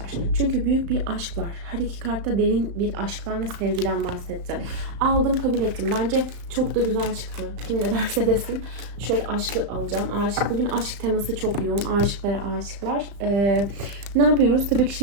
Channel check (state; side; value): late; left; 35 ms